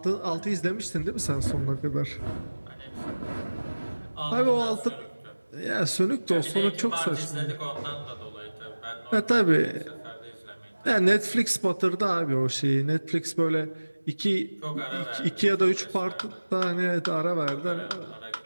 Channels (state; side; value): inverted; both; correlation -1.00